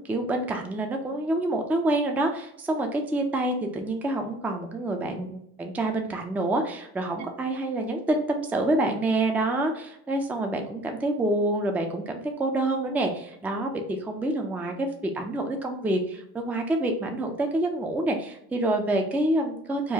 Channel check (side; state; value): both; normal; correlation 0.55